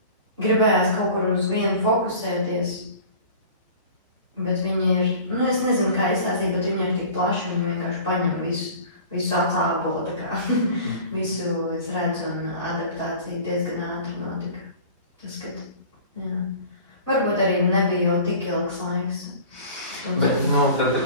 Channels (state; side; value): inverted; both; correlation -0.42